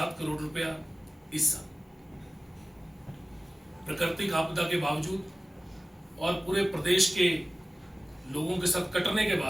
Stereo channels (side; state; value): both; normal; correlation 0.97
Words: करोड़ रुपया इस साल। प्राकृतिक आपदा के बावजूद और पूरे प्रदेश के लोगों के साथ कटने के